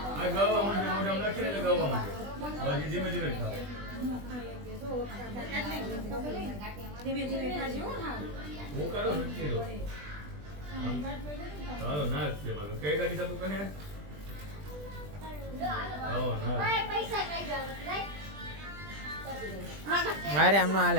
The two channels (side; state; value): left; late; 20 ms